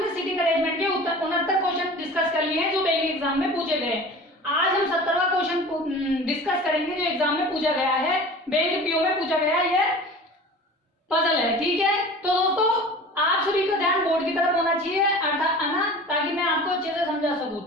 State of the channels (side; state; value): both; normal; correlation 0.39